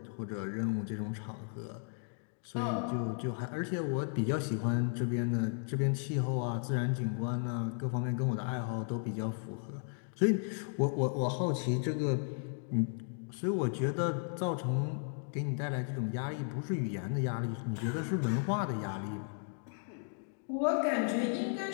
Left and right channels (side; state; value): right; silent; 55 dB below the other